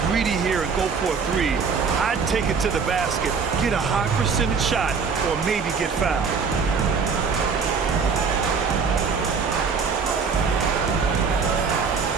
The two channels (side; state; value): left; quieter; 5.5 dB